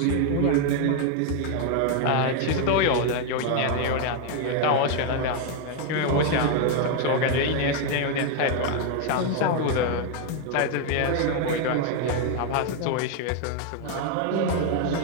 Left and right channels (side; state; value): both; different; correlation 0.01